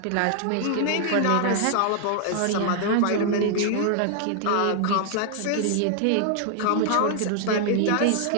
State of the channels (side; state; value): both; different; correlation 0.00